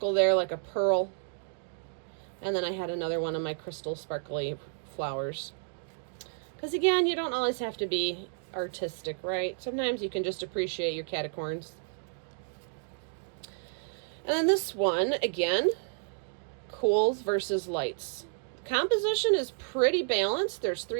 there like a pearl. And then I had another one of my crystal sparkly flowers. Because again, you don't always have to be artistic, right? Sometimes you can just appreciate your catacorns. And then this one, again, cools versus lights. Composition is pretty balanced. There's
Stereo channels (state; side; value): silent; left; digital silence